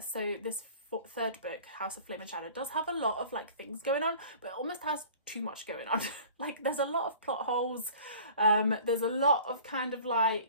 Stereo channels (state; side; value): inverted; both; correlation -0.45